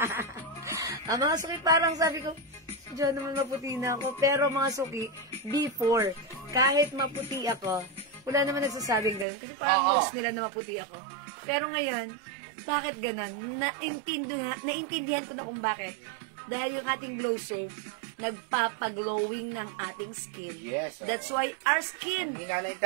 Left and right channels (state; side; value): drops out; left; at 9.2 s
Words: Ang mga suki, parang sabi ko, diyan naman maputi na ako. Pero mga suki, before, kahit maputi ako, wala naman nagsasabing gano'n. Kasi parang nose nila na maputi ako. Pero ngayon, bakit gano'n? Naintindihan ko na kung bakit. Dahil yung ating glow soap, nagpapaglowing ng ating skin. Yes. That's why our skin... Ang hina na